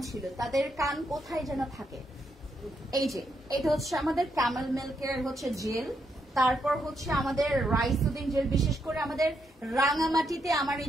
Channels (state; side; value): normal; both; correlation 0.79